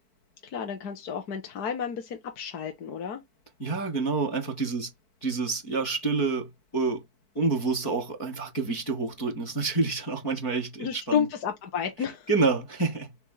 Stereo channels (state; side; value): late; right; 4.6 ms